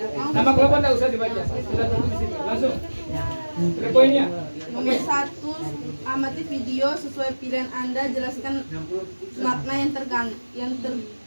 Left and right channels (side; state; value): both; inverted; correlation -1.00